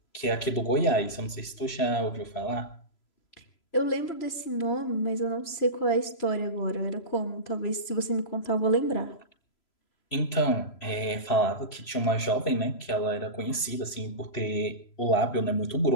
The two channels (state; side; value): late; right; 3.0 ms